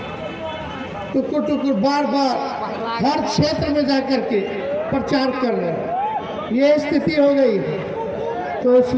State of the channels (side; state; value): both; identical; correlation 1.00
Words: टुकुर टुकुर बार बार हर क्षेत्र में जाकर के प्रचार कर रहे हैं। ये स्थिति हो गई है, तो